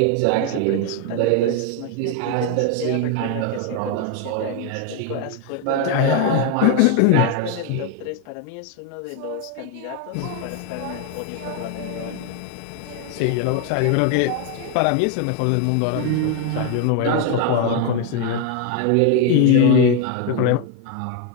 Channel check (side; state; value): both; different; correlation 0.01